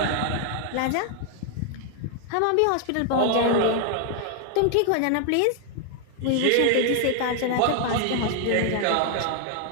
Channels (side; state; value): both; different; correlation 0.00